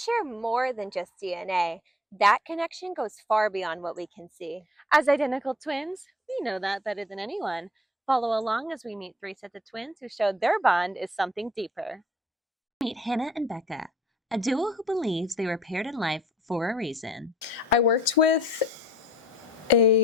more than just DNA. That connection goes far beyond what we can see. As identical twins, we know that better than anyone. Follow along as we meet three sets of twins who showed their bond is something deeper. Meet Hannah and Becca, a duo who believes they were paired in life for a reason. I worked with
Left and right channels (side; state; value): both; normal; correlation 0.55